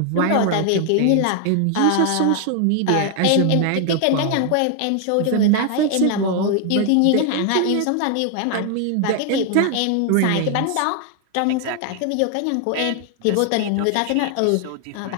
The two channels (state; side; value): different; both; correlation 0.00